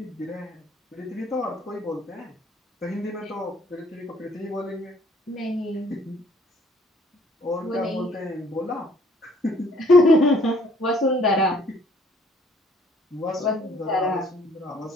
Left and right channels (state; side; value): normal; both; correlation 0.60